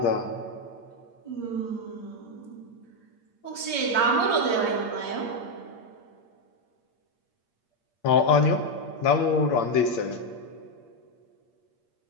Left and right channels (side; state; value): right; late; 8.7 ms